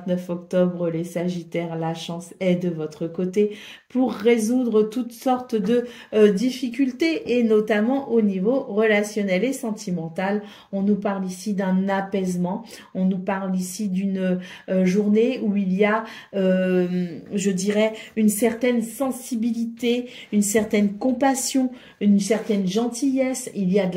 octobre, les Sagittaires, la chance est de votre côté pour résoudre toutes sortes de difficultés et notamment au niveau relationnel et sentimental. On nous parle ici d'un apaisement, on nous parle ici d'une journée où il y a, je dirais, une certaine sensibilité, une certaine compassion, une certaine gentillesse, il y a de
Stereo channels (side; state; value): both; identical; correlation 1.00